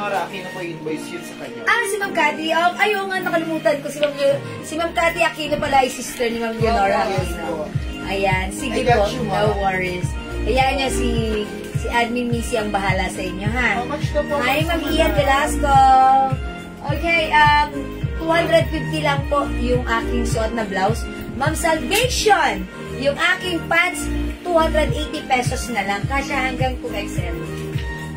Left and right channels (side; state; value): both; identical; correlation 1.00